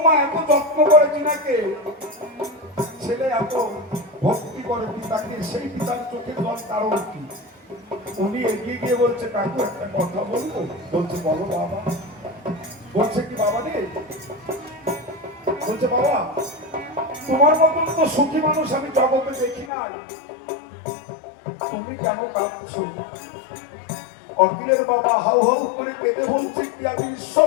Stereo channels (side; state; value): right; drops out; at 19.7 s